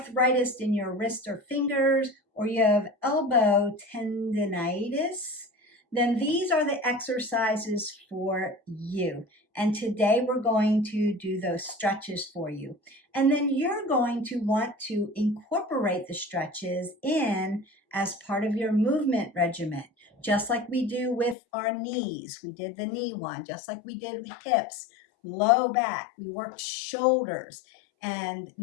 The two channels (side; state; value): right; drops out; at 21.4 s